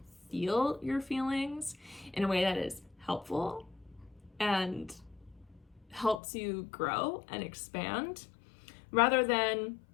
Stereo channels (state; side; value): drops out; right; at 6.2 s